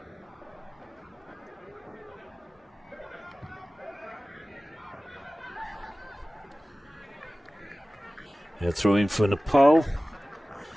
Yeah, throwing for Nepal.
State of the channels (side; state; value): both; normal; correlation 0.97